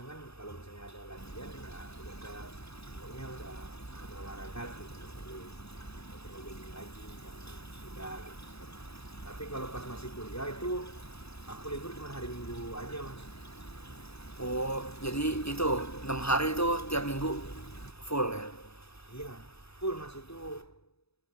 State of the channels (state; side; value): late; right; 0.78 ms